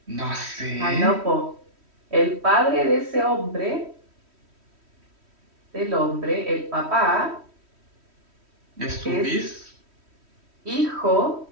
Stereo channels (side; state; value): left; late; 3.1 ms